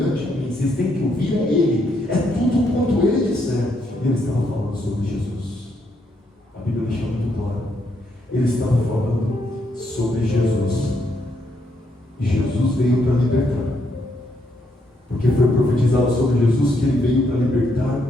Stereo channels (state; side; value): normal; both; correlation 0.76